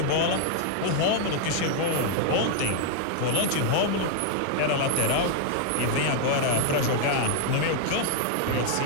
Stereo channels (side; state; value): both; different; correlation 0.00